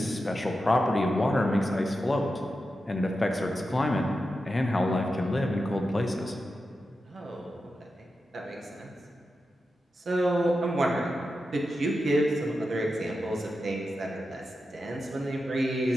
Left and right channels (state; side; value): normal; both; correlation 0.90